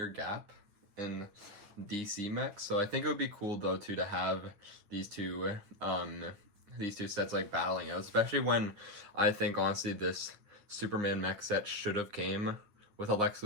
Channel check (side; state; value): left; late; 9.9 ms